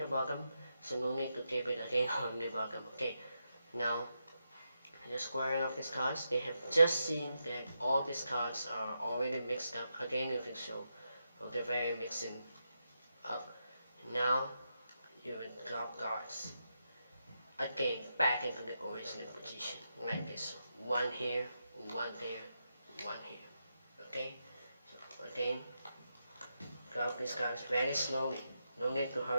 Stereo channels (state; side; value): inverted; both; correlation -0.85